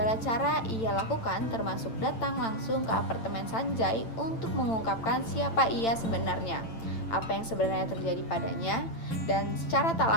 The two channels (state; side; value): late; right; 8.9 ms